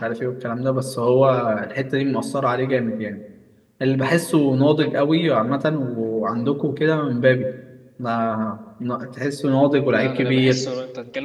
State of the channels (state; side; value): identical; both; correlation 1.00